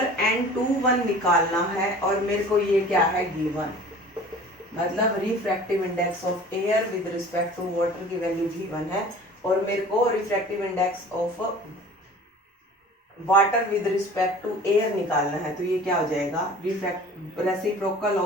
n21 निकालना है और मेरे को ये क्या है गिवन, मतलब refractive index of air with respect to water की वैल्यू गिवन है और मेरे को refractive index of water with respect to air निकालना है, तो ये क्या हो जाएगा, reciprocal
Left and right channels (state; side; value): normal; both; correlation 0.44